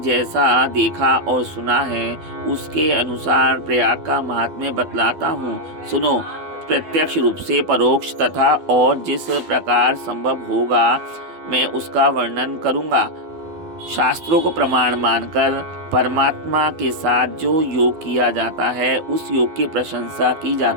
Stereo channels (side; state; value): left; late; 12 ms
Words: देखा और सुना है उसके अनुसार प्रयाग का महात्म्य बतलाता हूँ। सुनो। प्रत्यक्ष रूप से, परोक्ष तथा और जिस प्रकार संभव होगा मैं उसका वर्णन करूँगा। शास्त्रों को प्रमाण मानकर परमात्मा के साथ जो योग किया जाता है उस योग की प्रशंसा की